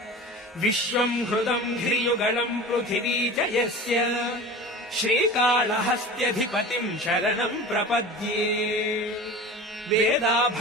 विश्वम् हृदम् धिर्युगलम् पृथिवी च यस्य श्रीकाళहस्त्यधिपतिम् शरणम् प्रपद्ये वेदा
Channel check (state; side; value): normal; both; correlation 0.35